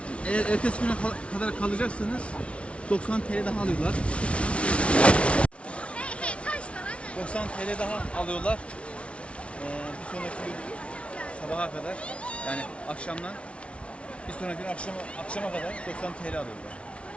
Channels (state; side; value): late; right; 0.061 ms